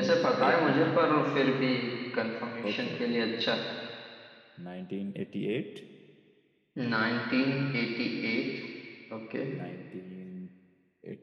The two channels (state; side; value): identical; both; correlation 1.00